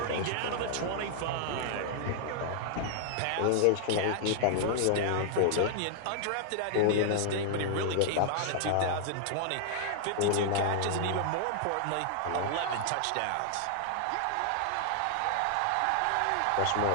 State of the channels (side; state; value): both; different; correlation -0.01